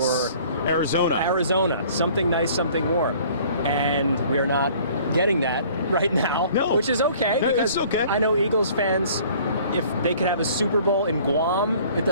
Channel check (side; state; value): both; inverted; correlation -0.53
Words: Arizona, something nice, something warm. And we're not getting that right now, which is okay. No, it's okay. I know Eagles fans, if they could have a Super Bowl in Guam, it